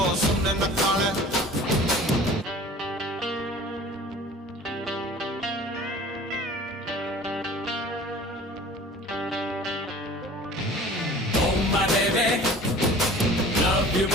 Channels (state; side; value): normal; both; correlation 0.45